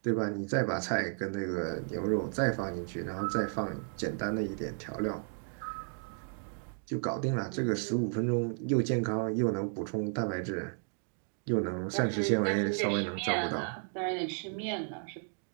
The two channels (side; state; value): left; silent; 56 dB below the other